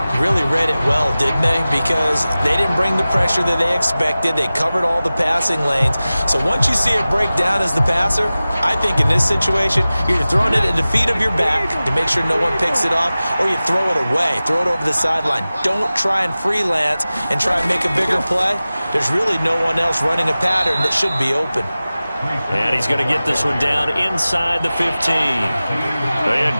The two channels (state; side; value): inverted; both; correlation -0.97